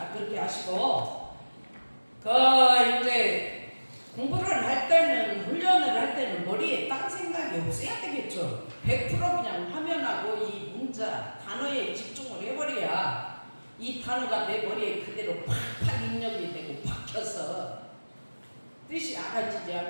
그렇게 하시고 이제 공부를 할 때는 훈련을 할 때는 머리에 딴 생각이 없어야 되겠죠. 100% 그냥 화면하고 이 문자 단어에 집중을 해버려야 이 단어가 내 머리에 그대로 팍팍 입력이 되고 박혀서 뜻이 알아지지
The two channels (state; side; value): inverted; both; correlation -1.00